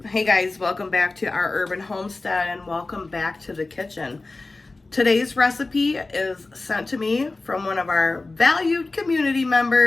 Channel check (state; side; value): quieter; right; 3.3 dB